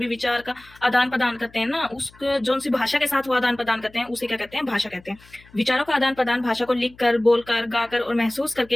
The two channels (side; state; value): left; noise; hum, 26 dB below the sound